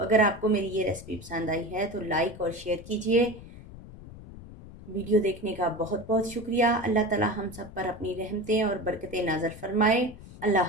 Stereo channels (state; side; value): noise; left; rumble, 16 dB below the sound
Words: आपको मेरी ये रेसिपी पसंद आई है तो लाइक और शेयर कीजिए। वीडियो देखने का बहुत बहुत शुक्रिया। अल्लाह ताला हम सब पर अपनी रहमतें और बरकतें नाज़िल फरमाए।